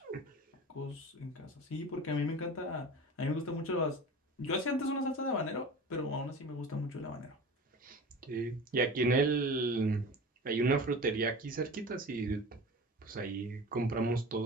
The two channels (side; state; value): both; normal; correlation 0.35